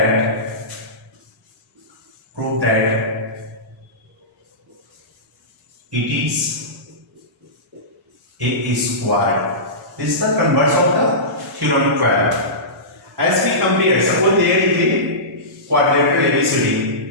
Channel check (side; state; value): both; normal; correlation -0.20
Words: it is a square. This is the converse of the theorem 12. As we compare, suppose there is a quadrilateral ABCD.